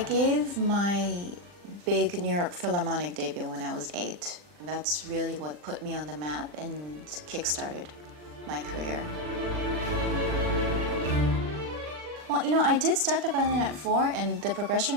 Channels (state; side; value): late; left; 40 ms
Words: gave my big New York Philharmonic debut when I was 8. That's really what put me on the map and kick-started my career. Well, you know, I did start the violin at 4, and the